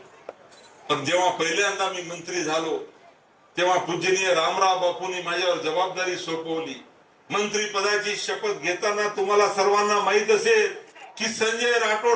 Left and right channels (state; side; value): identical; both; correlation 1.00